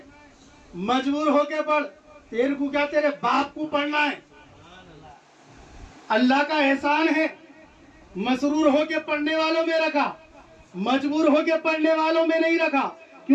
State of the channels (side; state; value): both; identical; correlation 1.00